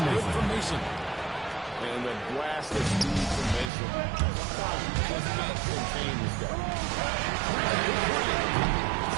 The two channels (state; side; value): drops out; left; at 3.7 s